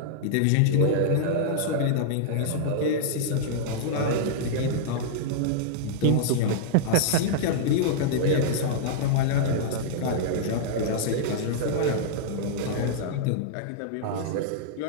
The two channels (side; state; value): both; different; correlation -0.02